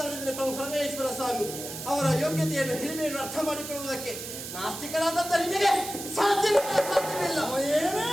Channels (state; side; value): noise; right; hiss, 9 dB below the sound